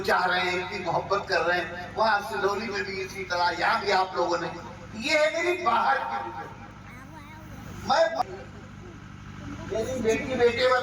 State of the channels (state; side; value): identical; both; correlation 1.00